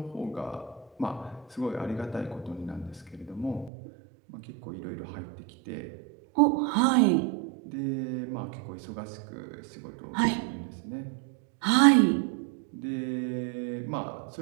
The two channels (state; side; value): drops out; left; at 3.7 s